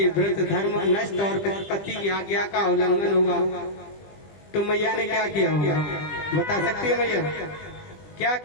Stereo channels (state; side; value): late; right; 20 ms